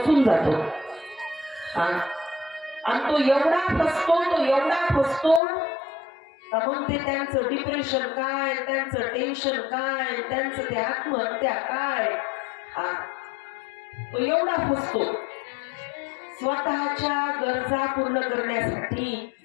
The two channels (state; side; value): drops out; right; at 5.4 s